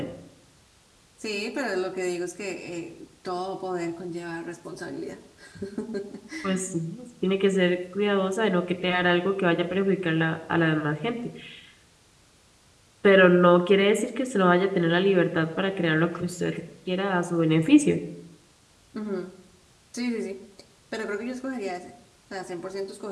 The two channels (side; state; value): both; identical; correlation 1.00